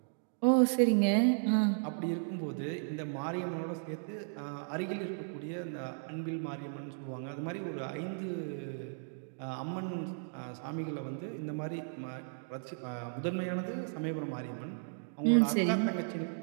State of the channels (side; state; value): left; silent; digital silence